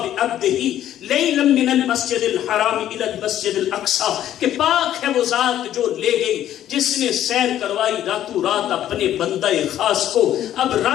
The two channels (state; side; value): quieter; right; 11.7 dB